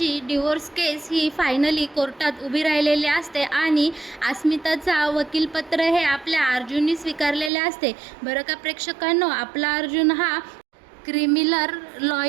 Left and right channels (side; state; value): left; drops out; at 7.5 s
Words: डिवोर्स केस ही फायनली कोर्टात उभी राहिलेली असते आणि अस्मिताचा वकीलपत्र हे आपल्या अर्जुनने स्वीकारलेले असते. बरं का प्रेक्षकांनो, आपला अर्जुन हा क्रिमिनल